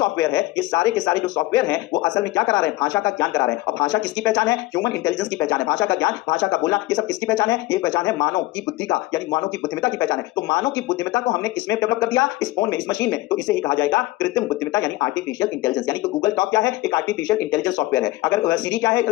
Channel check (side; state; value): right; quieter; 18.8 dB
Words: है, ये सारे के सारे जो सॉफ्टवेयर हैं वो असल में क्या करा रहे हैं, भाषा का ज्ञान करा रहे हैं। और भाषा किसकी पहचान है, ह्यूमन इंटेलिजेंस की पहचान है। भाषा का ज्ञान, भाषा का बोलना, ये सब किसकी पहचान है, ये पहचान है मानव की बुद्धि का, यानी मानव की बुद्धिमत्ता की पहचान है। तो मानव की बुद्धिमत्ता को हमने किसमें डेवलप कर दिया, इस फोन में, इस मशीन में। तो इसे ही कहा जाएगा कृत्रिम बुद्धिमत्ता यानी आर्टिफिशियल इंटेलिजेंस। यानी कि गूगल टॉक क्या है, एक आर्टिफिशियल इंटेलिजेंस सॉफ्टवेयर है। अगर सीरी क्या है